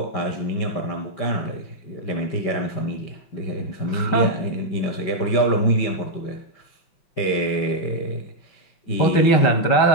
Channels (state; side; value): late; right; 5.2 ms